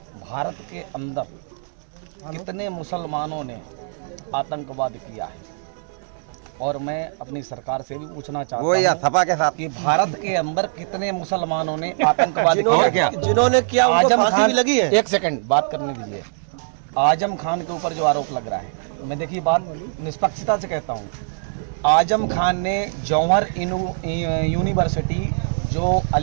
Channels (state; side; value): silent; left; digital silence